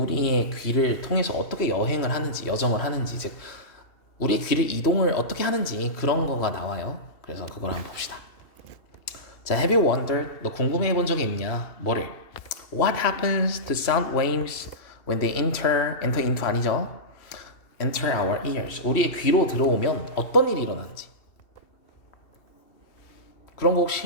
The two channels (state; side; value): late; right; 2.7 ms